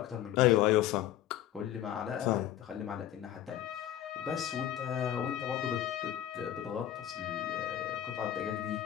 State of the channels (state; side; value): quieter; right; 12.0 dB